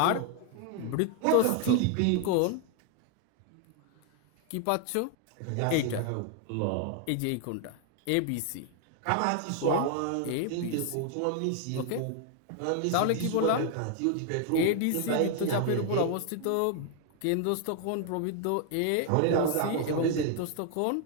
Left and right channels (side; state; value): both; different; correlation 0.00